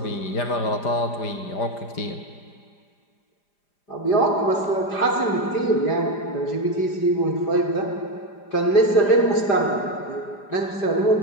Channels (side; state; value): right; late; 5.0 ms